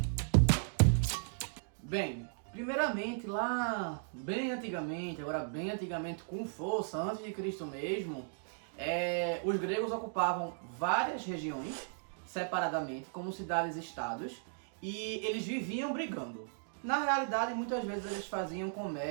Bem, primeiramente, lá bem antigamente, agora bem antigamente com força, antes de Cristo mesmo, os gregos ocupavam várias regiões separadamente, como cidades-estados, e eles viviam brigando. Na realidade, muitas vezes eles faziam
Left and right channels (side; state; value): left; silent; digital silence